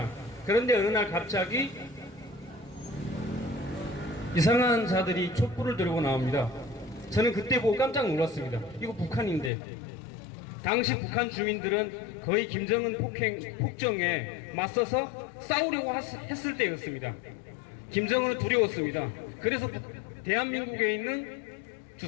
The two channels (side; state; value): right; drops out; at 9.5 s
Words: 그런데 어느 날 갑자기 이상한 자들이 촛불을 들고 나옵니다. 저는 그때 보고 깜짝 놀랐습니다. 이거 북한인데. 당시 북한 주민들은 거의 김정은 폭정에 맞서서 싸우려고 했을 때였습니다. 김정은은 두려웠습니다. 그래서 대한민국에 있는